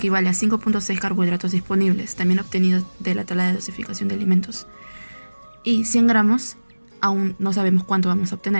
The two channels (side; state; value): both; inverted; correlation -1.00